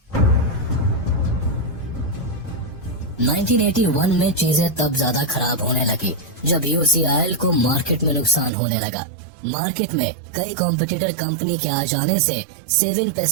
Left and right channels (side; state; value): left; drops out; at 8.5 s